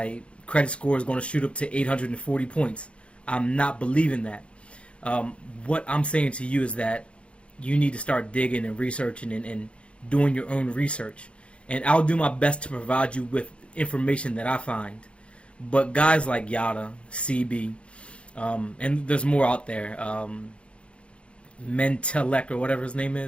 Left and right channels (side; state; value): right; late; 0.059 ms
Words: credit score is going to shoot up to 840 points. I'm not believing that. What I'm saying to you is that you need to start digging and researching and doing your own research. And I'll do my best to provide you with information that I find. But guys like Yada, CB, and there's more out there, Mentelek or whatever his name